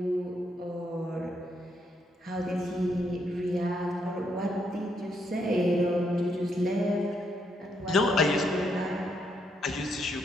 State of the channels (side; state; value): both; normal; correlation 0.76